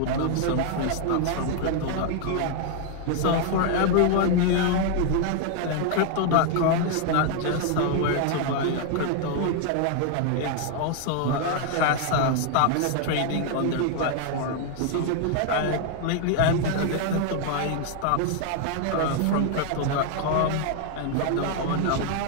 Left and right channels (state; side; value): different; both; correlation 0.00